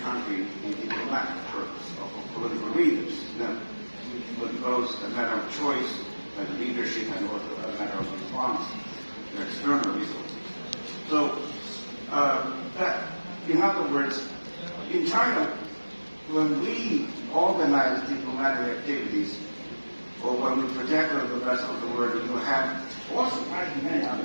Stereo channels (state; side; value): inverted; both; correlation -1.00